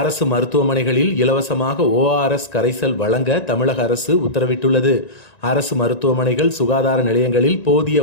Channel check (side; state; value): right; late; 1.9 ms